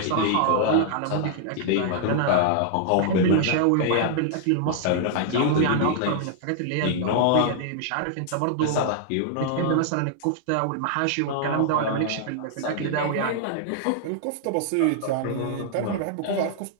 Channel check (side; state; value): both; different; correlation -0.01